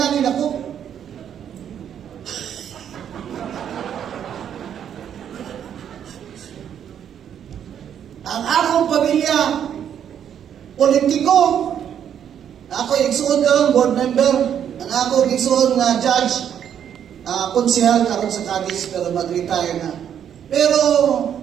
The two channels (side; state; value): left; quieter; 9.1 dB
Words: ako. Ang akong pamilya, politiko, ako igsuon ka board member, ang ako igsuon nga judge, konsehal karon sa Cadiz pero mag-retire na. Pero